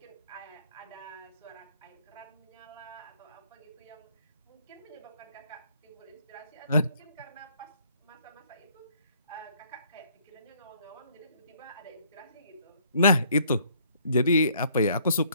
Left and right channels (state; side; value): inverted; both; correlation -0.63